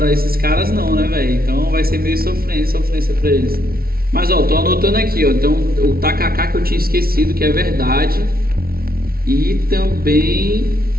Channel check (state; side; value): late; left; 0.44 ms